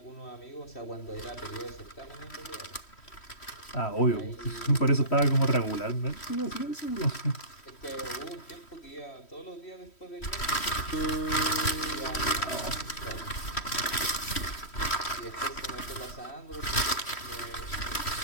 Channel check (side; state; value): right; late; 3.1 ms